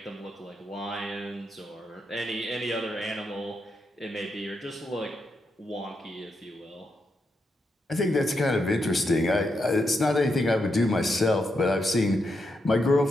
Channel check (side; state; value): both; normal; correlation 0.83